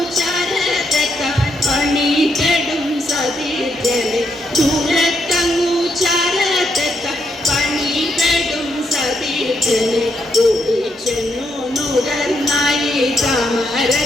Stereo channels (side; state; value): both; normal; correlation 0.78